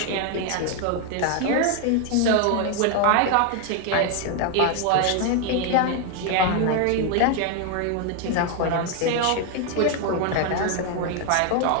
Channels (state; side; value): different; both; correlation 0.01